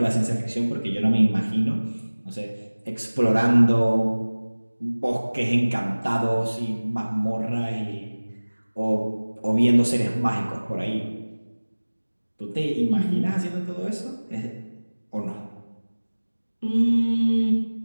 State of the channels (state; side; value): inverted; both; correlation -1.00